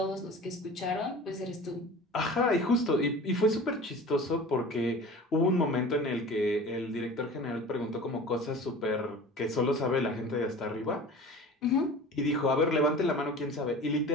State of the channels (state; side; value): normal; both; correlation 0.39